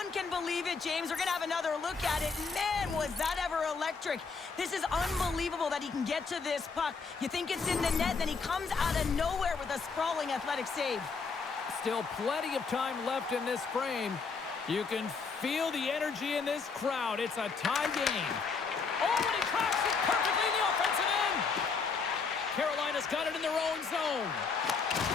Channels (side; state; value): right; quieter; 5.0 dB